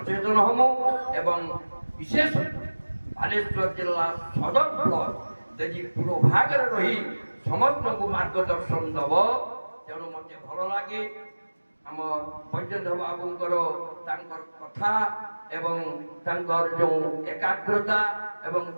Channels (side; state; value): both; inverted; correlation -1.00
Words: ହମୁ ଏବଂ ବିଶେଷ ବାଲେଶ୍ୱର ଜିଲ୍ଲା ସଦର ବ୍ଲକ ଯଦି ପୂର୍ବ ଭାଗରେ ରହି ସମସ୍ତଙ୍କୁ ମାର୍ଗଦର୍ଶନ ଦେବ, ତେଣୁ ମୋତେ ଭଲ ଲାଗେ। ଆମ ବୈଜୟନ୍ତ ବାବୁଙ୍କର ତାଙ୍କର କଥା ଏବଂ ତାଙ୍କର ଯେଉଁ ଏକାଗ୍ରତା ଏବଂ